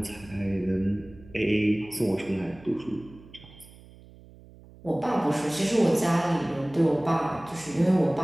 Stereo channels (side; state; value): right; noise; hum, 22 dB below the sound